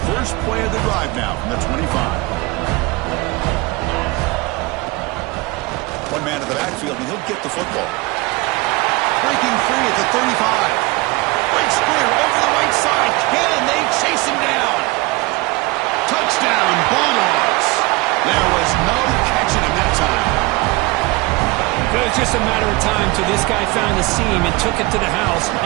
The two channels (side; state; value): left; quieter; 23.3 dB